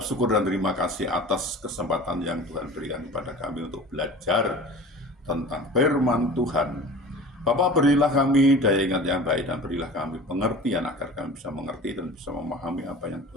dan terima kasih atas kesempatan yang Tuhan berikan kepada kami untuk belajar tentang firman Tuhan. Bapa, berilah kami daya ingat yang baik dan berilah kami pengertian agar kami bisa mengerti dan bisa memahami apa yang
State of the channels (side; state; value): both; normal; correlation 0.39